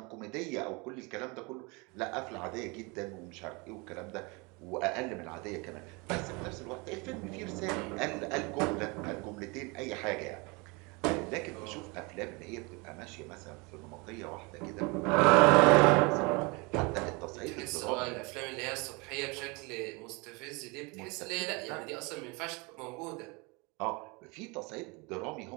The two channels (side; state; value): left; quieter; 28.2 dB